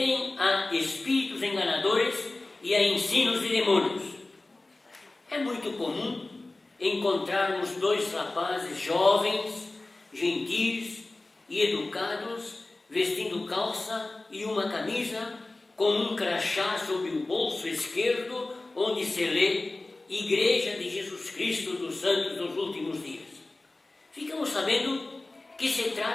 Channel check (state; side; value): quieter; right; 3.0 dB